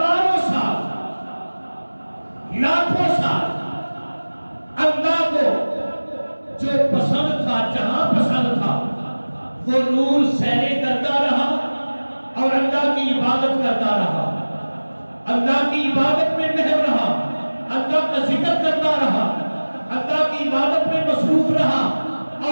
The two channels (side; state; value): both; inverted; correlation -1.00